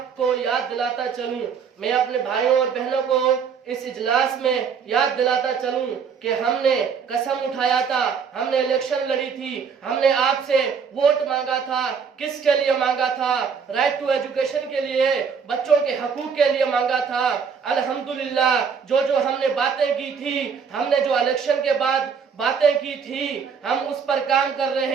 याद दिलाता चलूं, मैं अपने भाइयों और बहनों को इस इजलास में याद दिलाता चलूं कि हमने कसम उठाया था, हमने इलेक्शन लड़ी थी, हमने आपसे वोट मांगा था। किसके लिए मांगा था? राइट टू एजुकेशन के लिए, बच्चों के हकूक के लिए मांगा था। अल्हम्दुलिल्लाह, जो हमने बातें की थी, हमने जो इलेक्शन के बाद बातें की थी, हम उस पर काम कर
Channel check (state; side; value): quieter; left; 6.4 dB